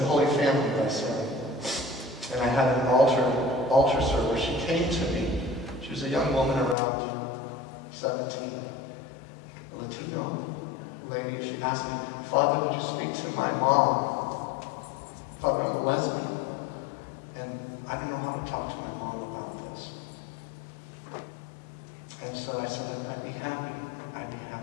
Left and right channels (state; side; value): drops out; right; at 6.8 s